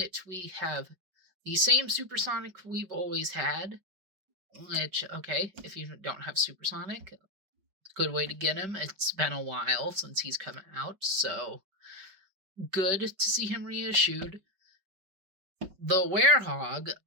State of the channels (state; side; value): late; left; 5.2 ms